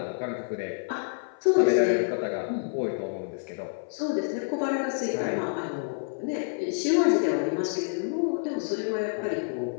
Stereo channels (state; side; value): silent; right; 55 dB below the other